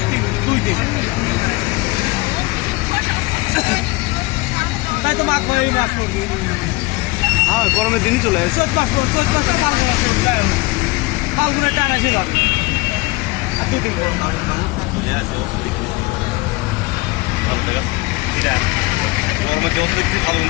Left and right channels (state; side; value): quieter; right; 22.8 dB